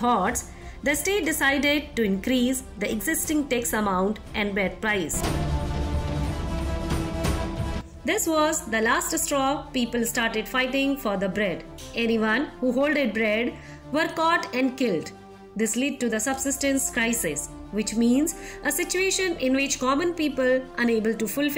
the state decided to increase the existing tax amount and bread price. This was the last straw. People started fighting for the bread. Anyone who hoarded bread were caught and killed. This led to the subsistence crisis, which means a situation in which common people unable to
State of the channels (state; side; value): identical; both; correlation 1.00